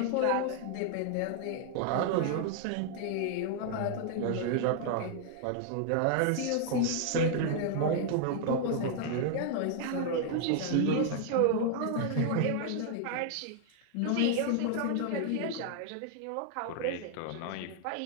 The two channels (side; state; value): both; different; correlation 0.00